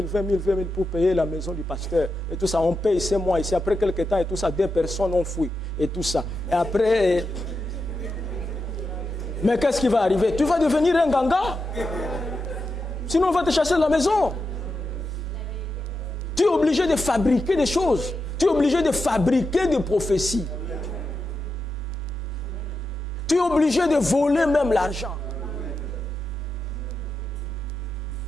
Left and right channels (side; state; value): both; normal; correlation 0.88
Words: 000 pour payer la maison du pasteur. Et tout ça, on paye ces mois ici. Après quelques temps et tout ça, 2 personnes ont fui. Et tout ça. Et après... Mais qu'est-ce qui va arriver? Tu vas devenir un ganga. Sinon on va te chasser de la maison. Tu es obligé de fabriquer des choses. Tu es obligé de fabriquer des prophéties. Tu es obligé de voler même l'argent.